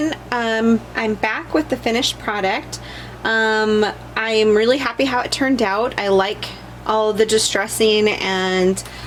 I'm back with the finished product. I'm really happy how it turned out. I like all the distressing and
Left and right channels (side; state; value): both; identical; correlation 1.00